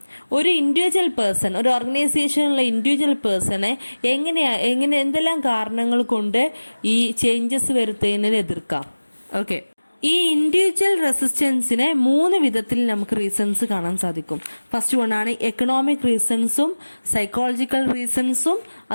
ഒരു ഇൻഡിവിജ്വൽ പേഴ്സൺ, ഒരു ഓർഗനൈസേഷനിലുള്ള ഇൻഡിവിജ്വൽ പേഴ്സണെ എങ്ങനെ എന്തെല്ലാം കാരണങ്ങൾ കൊണ്ട് ഈ ചേഞ്ചസ് വരുത്തുന്നതിന് എതിർക്കാം. ഓക്കെ, ഈ ഇൻഡിവിജ്വൽ റെസിസ്റ്റൻസിനെ 3 വിധത്തിൽ നമുക്ക് റീസൺസ് കാണാൻ സാധിക്കും. ഫസ്റ്റ് വണ്ണാണ് എക്കണോമിക് റീസൺസും, സൈക്കോളജിക്കൽ റീസൺസും,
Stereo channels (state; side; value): inverted; both; correlation -1.00